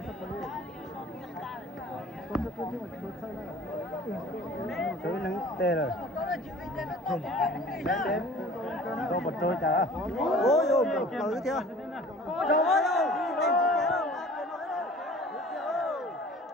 Thứ nắng tê rồi. Tôi bật trôi chả. Ôi ôi, tới chưa? Trời ơi, tên gì thế đâu?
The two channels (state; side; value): normal; both; correlation 0.46